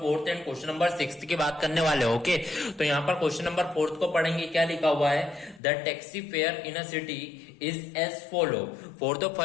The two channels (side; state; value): right; drops out; at 5.6 s